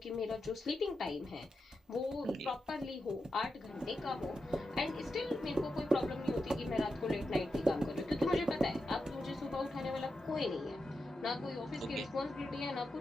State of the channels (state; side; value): normal; both; correlation 0.88